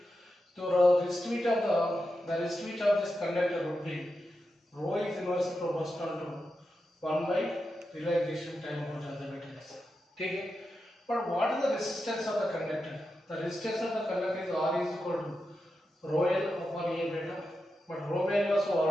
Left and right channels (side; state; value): both; normal; correlation 0.89